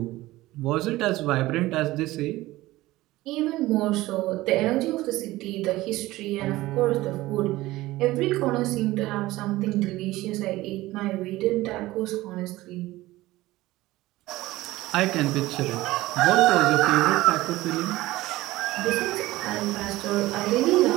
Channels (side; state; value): left; quieter; 17.8 dB